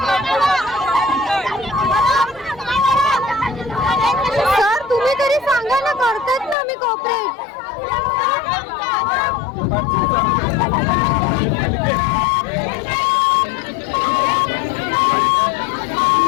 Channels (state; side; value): drops out; right; at 6.6 s